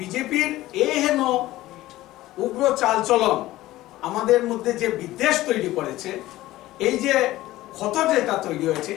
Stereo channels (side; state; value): right; quieter; 16.4 dB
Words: হেন উগ্র চালচলন আমাদের মধ্যে যে বিদ্বেষ তৈরি করেছে, এই যে ক্ষত যেটা তৈরি হয়েছে,